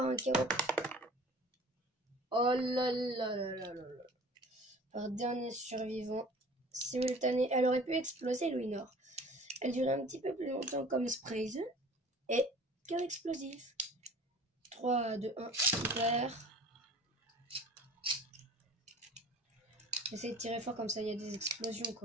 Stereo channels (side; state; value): both; normal; correlation 0.45